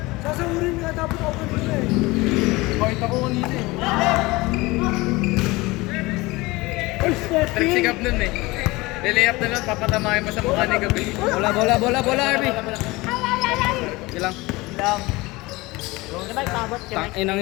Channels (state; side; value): quieter; right; 21.9 dB